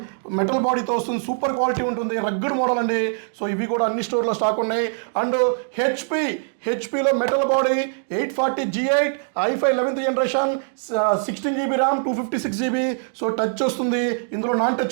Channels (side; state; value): left; silent; digital silence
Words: మెటల్ బాడీతో వస్తుంది, సూపర్ క్వాలిటీ ఉంటుంది, రగ్గడ్ మోడల్ అండి. సో ఇవి కూడా అన్ని స్టోర్లో స్టాక్ ఉన్నాయి. అండ్ హెచ్పీలో metal body 840 G8 i5 11th generation, 16 GB RAM 256 GB. So touch వస్తుంది, ఇందులో నాన్